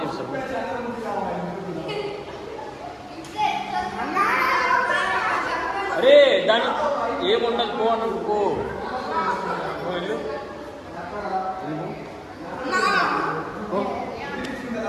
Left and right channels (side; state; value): both; identical; correlation 1.00